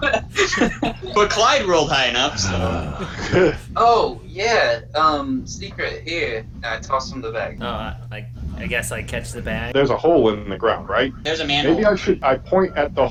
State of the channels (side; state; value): both; identical; correlation 1.00